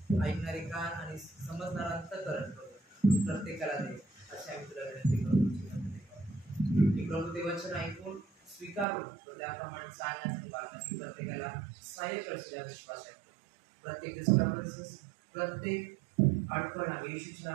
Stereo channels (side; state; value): left; drops out; at 8.8 s